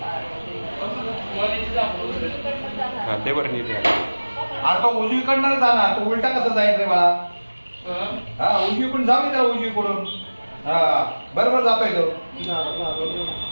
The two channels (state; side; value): inverted; both; correlation -1.00